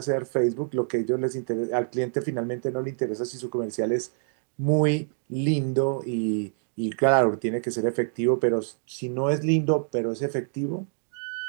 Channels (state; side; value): silent; left; digital silence